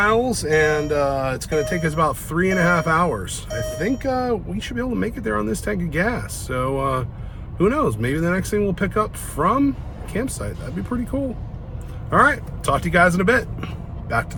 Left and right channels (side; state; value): both; identical; correlation 1.00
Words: and it's going to take us about 3.5 hours. I think we should be able to make it there on this tank of gas. So who knows? Maybe the next thing we'll pick up from campsite. That'd be pretty cool. All right, talk to you guys in a bit. Back to